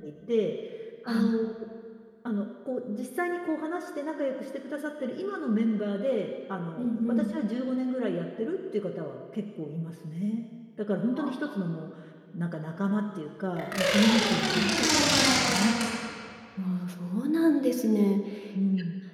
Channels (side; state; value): both; identical; correlation 1.00